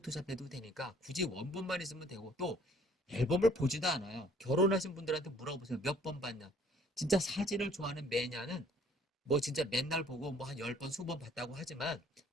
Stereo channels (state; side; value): normal; both; correlation 0.58